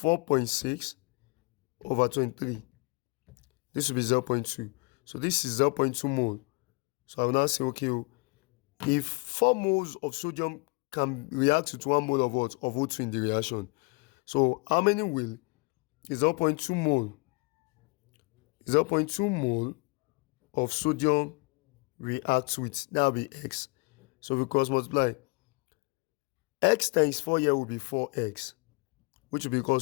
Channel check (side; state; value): right; quieter; 29.6 dB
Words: over 23. This will be 0.2. So this is 0.2 mole. So I will now say, okay, if 4 moles of sodium can react with 1 mole of what? Of O2 in the reaction. So how many will? Is 0.2 mole. 0.2 mole of sodium reacts with. That will be X. So we cross multiply. X times 4 here will be 4X, which will be equal